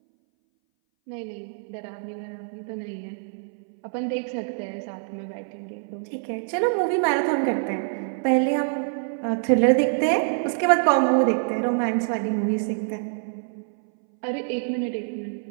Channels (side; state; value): left; silent; 60 dB below the other